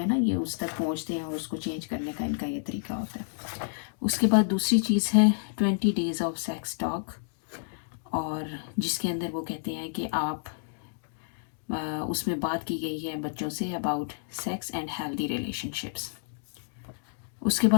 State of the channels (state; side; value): silent; right; digital silence